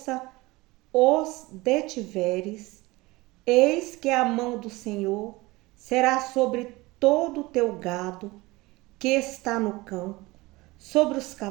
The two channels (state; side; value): quieter; left; 21.4 dB